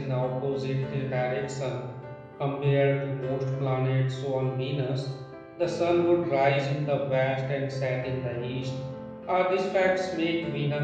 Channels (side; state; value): both; identical; correlation 1.00